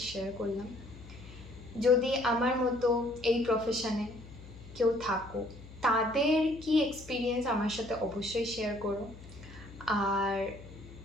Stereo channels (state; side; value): noise; left; hum, 17 dB below the sound